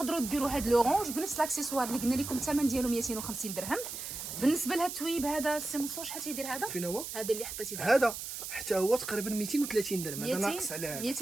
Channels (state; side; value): noise; right; hiss, 7 dB below the sound